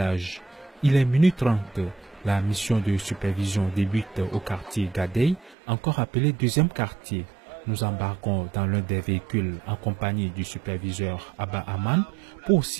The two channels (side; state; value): left; drops out; at 5.6 s